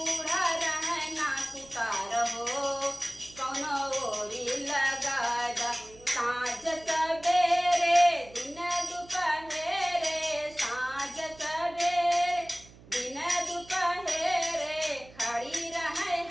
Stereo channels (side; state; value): right; noise; hum, 22 dB below the sound